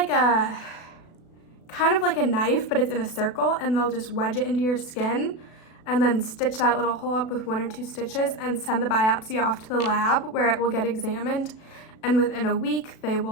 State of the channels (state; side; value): late; right; 36 ms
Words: a knife, but it's in a circle, and they'll just wedge it into your skin and then stitch that little hole up with 1 or 2 stitches and send the biopsy off to the lab where it will get examined. And within a week, they